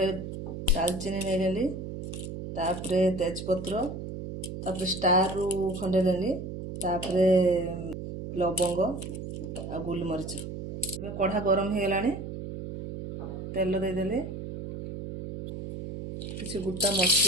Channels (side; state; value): right; noise; hum, 8 dB below the sound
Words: दालचीनी नेली तापरे तेजपत्र तापरे स्टार रु खंडे नेली तापरे लवंग आ गोलमरीच कढ़ा गरम हो गलानी तेल दे देले किसी गुटा